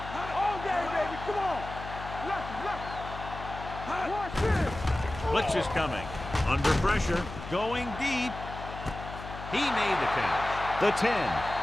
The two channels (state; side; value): noise; left; hum, 11 dB below the sound